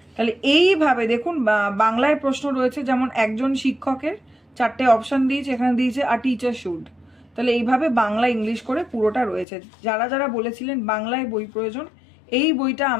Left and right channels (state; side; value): drops out; right; at 9.5 s